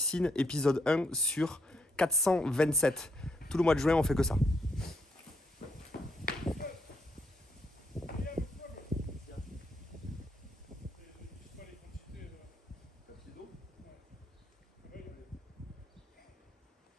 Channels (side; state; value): both; normal; correlation 0.73